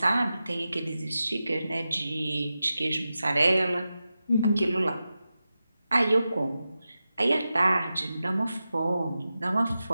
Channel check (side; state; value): both; inverted; correlation -0.92